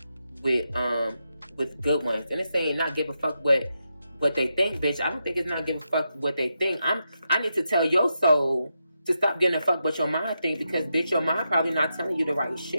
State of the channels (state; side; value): inverted; both; correlation -0.85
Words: with good ones. And it's saying not give a fuck what they think, bitch. I don't think it's not give a fuck what they think. I need to tell your soul to stop getting a fuck what your mind think, because bitch, your mind probably not telling you the right